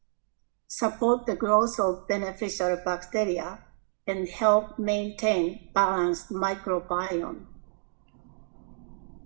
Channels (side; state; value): left; silent; digital silence